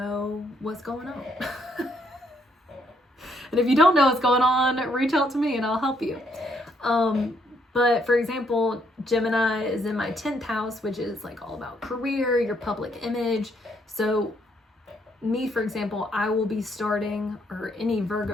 what's going on. And if you don't know what's going on, reach out to me and I'll help you. But for example, Gemini is in my 10th house, which is like all about career, your public image. So me, for example, I will be starting, or any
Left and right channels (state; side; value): normal; both; correlation 0.71